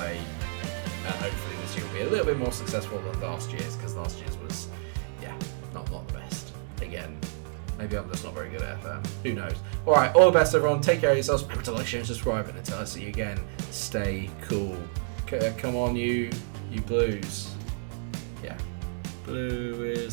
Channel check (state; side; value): silent; left; digital silence